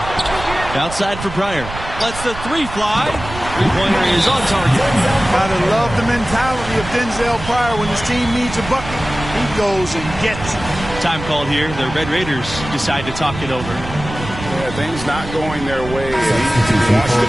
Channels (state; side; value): noise; right; rumble, 11 dB below the sound